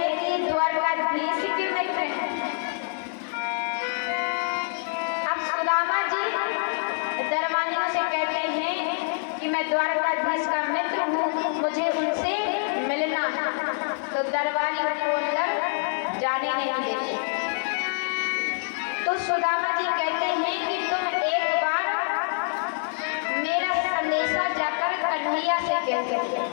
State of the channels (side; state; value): right; silent; digital silence